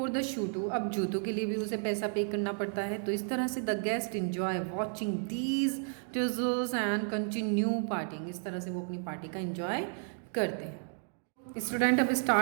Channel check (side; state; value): left; silent; 56 dB below the other